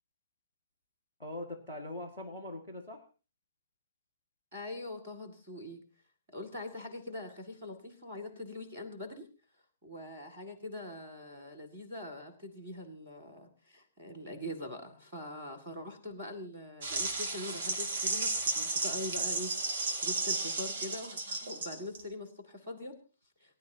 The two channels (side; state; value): both; inverted; correlation -0.53